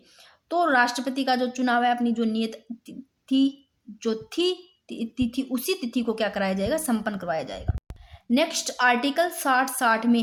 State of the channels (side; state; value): both; identical; correlation 1.00